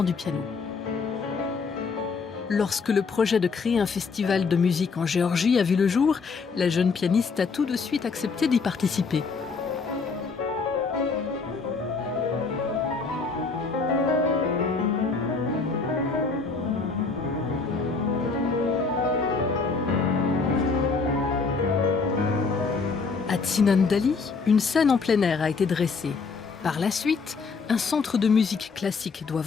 du piano. Lorsque le projet de créer un festival de musique en Géorgie a vu le jour, la jeune pianiste a tout de suite accepté d'y participer. À Tsinandali, une scène en plein air a été dressée. Par la suite, un centre de musique classique doit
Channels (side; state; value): right; quieter; 4.7 dB